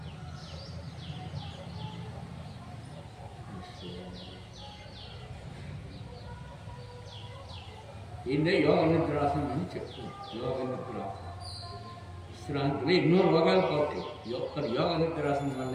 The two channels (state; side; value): identical; both; correlation 1.00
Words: ఈయన యోగ నిద్రాసనం అని చెప్తుంది. యోగ నిద్రాసనం విశ్రాంతిలో ఎన్నో రోగాలు పోతాయి. యోగ నిద్రాసనం